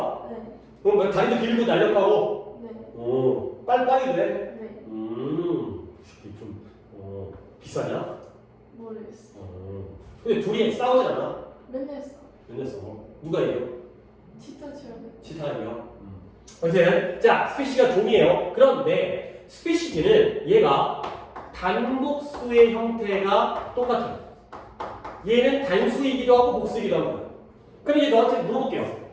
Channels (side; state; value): both; identical; correlation 1.00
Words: 네. 그럼 뭐 다리도 길고 날렵하고? 네. 빨리 돼? 네. 이게 좀, 비싸냐? 모르겠어. 근데 둘이 싸우지 않아? 맨날 써. 맨날 싸. 누가 이겨? 치타처럼. 치타가 이겨? 어쨌든, 자, 스피시가 종이에요. 그런데, 스피시즈는 얘가 단복수의 형태가 똑같아요. 얘는 단수이기도 하고 복수이기도 합니다. 그럼 이제 너한테 물어볼게요.